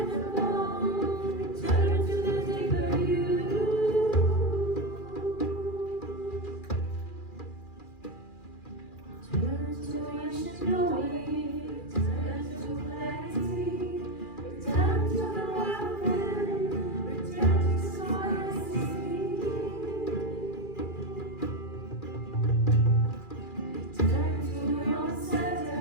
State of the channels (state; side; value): late; right; 2.4 ms